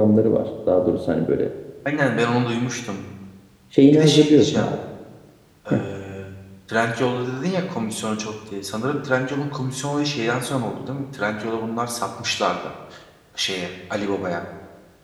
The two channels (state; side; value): identical; both; correlation 1.00